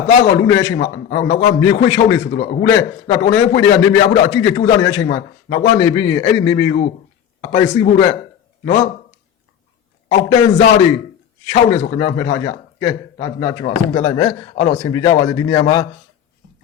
သားကောင်လူနေတဲ့အချိန်မှာနောက်ကမြေခွေးချောင်းနေဆိုတော့အခုလဲတော်နေဖွေးတွေကနေမြေအဖို့တော့အကြည့်ကြိုးစားနေတဲ့အချိန်မှာနောက်ကနေပြီးရင်အဲ့ဒီနေမြေကိုအပိုင်စီးဖို့အတွက်နော်အောက်တန်းစားတွေချောင်းနေဆိုခင်ဗျာမှတ်ထားကြကဲဒါကျွန်တော်အဆုံးသတ်လိုက်မယ်အဲ့တော့အဆင်ပြေကြပါစေဒီနေရာမှာ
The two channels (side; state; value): right; quieter; 9.1 dB